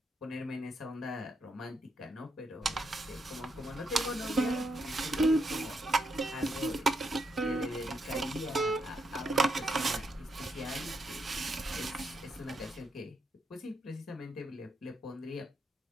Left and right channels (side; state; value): both; normal; correlation 0.79